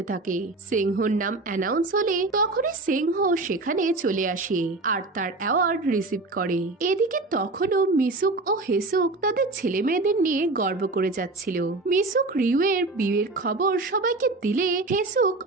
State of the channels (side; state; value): left; quieter; 3.2 dB